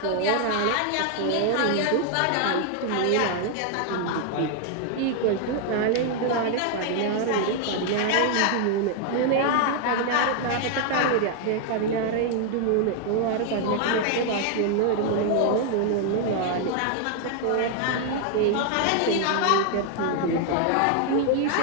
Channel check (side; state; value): both; different; correlation 0.00